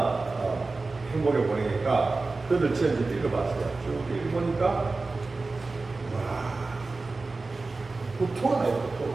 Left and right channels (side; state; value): left; quieter; 3.6 dB